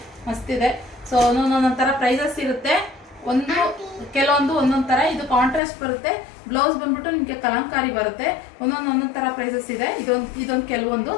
ಮಸ್ತಿದೆ. ಸೊ ಒಂದೊಂದೊಂದೊಂದು ಥರ ಪ್ರೈಸಸ್ ಇರುತ್ತೆ. ಕೆಲವೊಂದು ಒಂದೊಂದು ಥರ. ಇದು ಕಾಂಟ್ರಾಸ್ಟ್ ಬರುತ್ತೆ. ಬ್ಲೌಸ್ ಬಂದ್ಬಿಟ್ಟು ನಿಮಗೆ ಕಲಂಕಾರಿ ಬರುತ್ತೆ. ಒಂದೊಂದು ಥರ ಪ್ರೈಸಸ್ ಇದೆ. ಇದೊಂದು ಕೆಲವೊಂದು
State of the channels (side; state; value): right; drops out; at 5.6 s